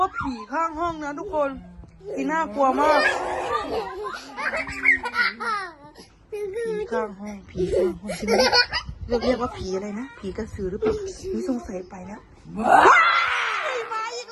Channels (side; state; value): both; identical; correlation 1.00